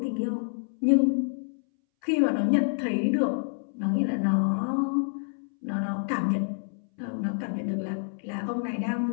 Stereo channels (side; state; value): right; silent; 60 dB below the other